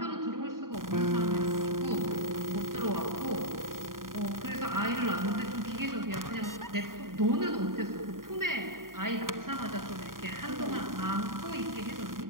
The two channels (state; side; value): late; left; 0.91 ms